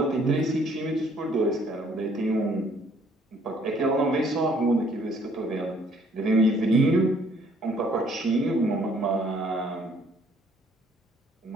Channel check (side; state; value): both; normal; correlation 0.62